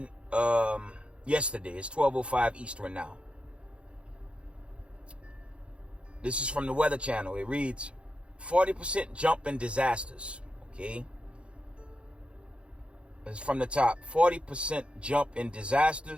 yesterday. It's 12:05 Eastern now. This is from the Weather Channel. It reads, 40% jump in disasters. Okay. It's from the top. 40% jump in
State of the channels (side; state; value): left; late; 0.058 ms